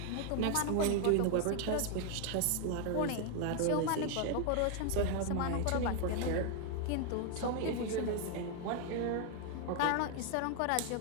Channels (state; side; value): different; both; correlation 0.00